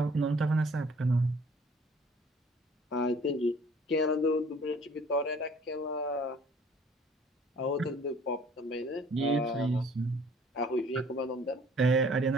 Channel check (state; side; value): normal; both; correlation 0.54